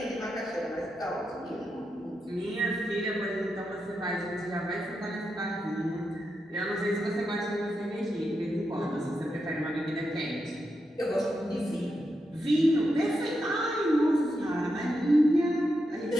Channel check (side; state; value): both; normal; correlation 0.86